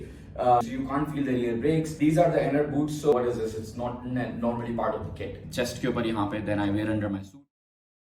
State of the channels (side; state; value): both; identical; correlation 1.00